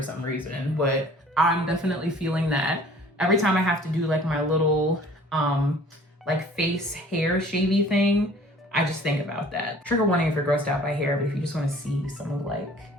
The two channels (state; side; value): normal; both; correlation 0.51